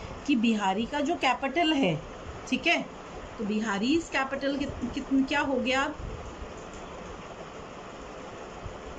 कि बिहारी का जो कैपिटल है, ठीक है, तो बिहारी कैपिटल क्या हो गया, अब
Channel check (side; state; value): both; identical; correlation 1.00